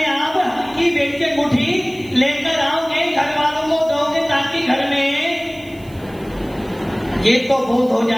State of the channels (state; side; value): noise; right; hiss, 26 dB below the sound